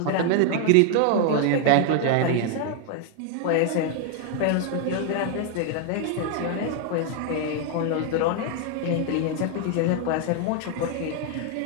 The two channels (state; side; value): different; both; correlation 0.00